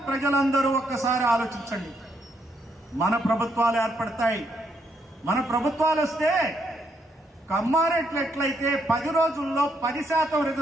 ప్రజలందరూ ఒక్కసారి ఆలోచించండి. మన ప్రభుత్వాలు ఏర్పడతాయి. మన ప్రభుత్వాలు వస్తే కమ్మారెడ్లు ఎట్లయితే 10 రోజుల్లో 10%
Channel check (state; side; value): normal; both; correlation 0.75